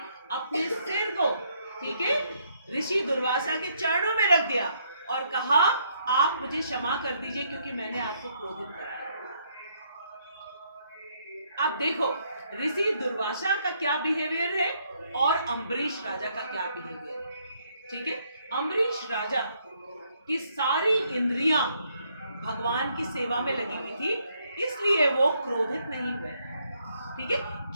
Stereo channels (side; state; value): both; inverted; correlation -0.71